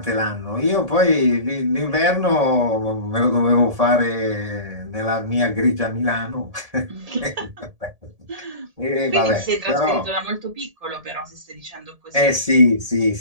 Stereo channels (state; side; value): late; left; 1.7 ms